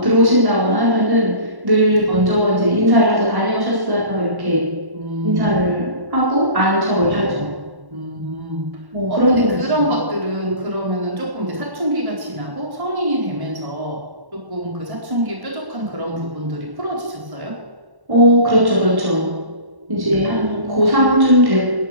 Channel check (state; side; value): late; left; 1.1 ms